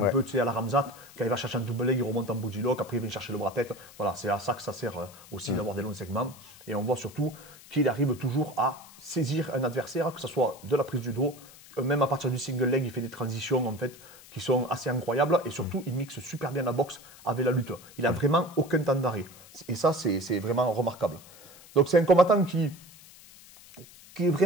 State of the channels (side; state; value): left; noise; hiss, 21 dB below the sound